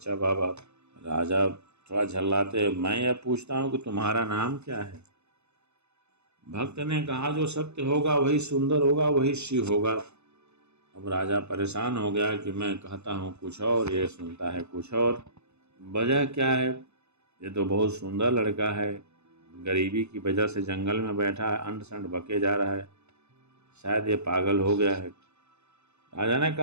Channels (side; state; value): left; late; 0.81 ms